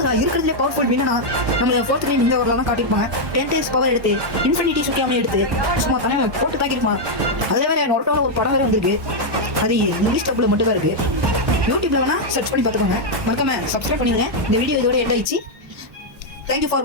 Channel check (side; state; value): left; late; 1.1 ms